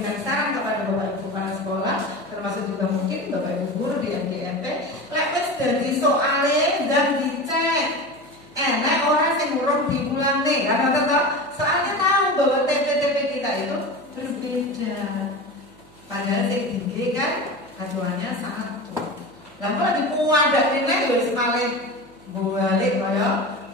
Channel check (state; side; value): noise; right; hum, 26 dB below the sound